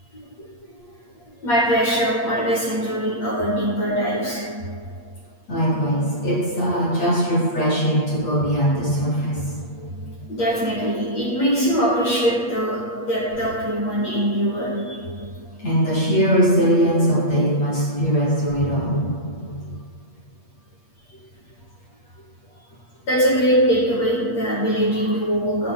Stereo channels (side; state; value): right; late; 8.5 ms